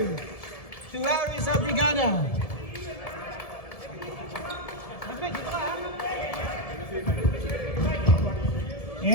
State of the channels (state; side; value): late; right; 1.7 ms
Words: to Aris Abrigada.